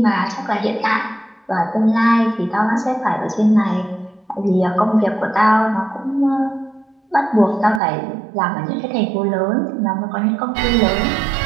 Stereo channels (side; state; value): left; drops out; at 7.8 s